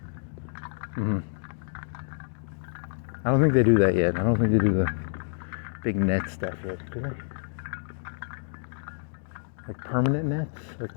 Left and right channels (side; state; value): right; silent; digital silence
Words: I don't think they do that yet. I don't think they do the big net stuff yet, do they? Like permanent nets? Like